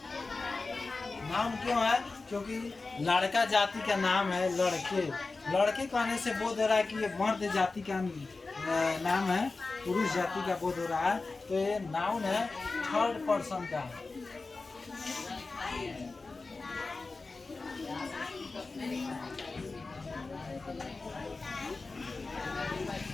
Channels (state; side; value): quieter; right; 3.8 dB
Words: नाम क्यों है, क्योंकि लड़का जाति का नाम है लड़के, लड़के कहने से बोध हो रहा है कि ये मर्द जाति का नाम है, पुरुष जाति का बोध हो रहा है। तो ये नाउन है, थर्ड पर्सन का।